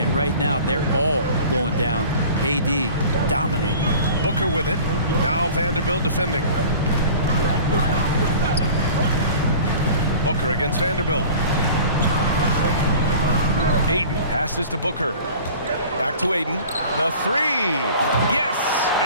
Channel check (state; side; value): inverted; both; correlation -0.43